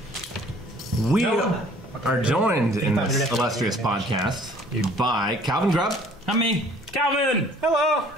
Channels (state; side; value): normal; both; correlation 0.55